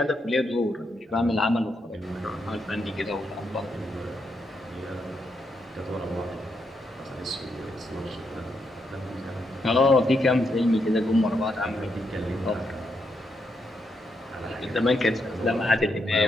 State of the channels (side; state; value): both; normal; correlation 0.81